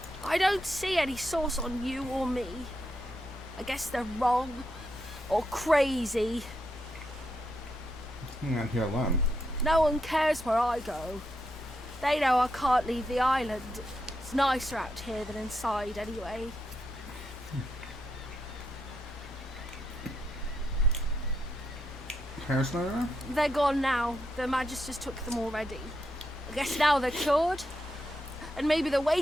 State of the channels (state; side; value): normal; both; correlation 0.82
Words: I don't see any source on you or me. I guess they're wrong. Or crazy. I'm not here alone. No one cares where I go. They know I can't leave the island. It's nicer out here than inside, anyway. Parents not around? They're gone now. Their Magisters took them already. I guess now they're cured. And maybe they're